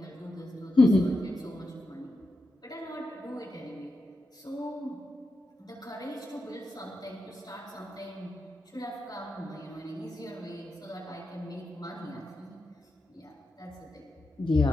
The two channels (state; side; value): normal; both; correlation 0.88